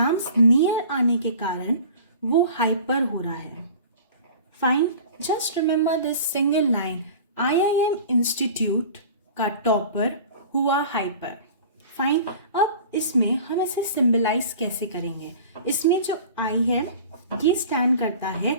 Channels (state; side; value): inverted; both; correlation -0.42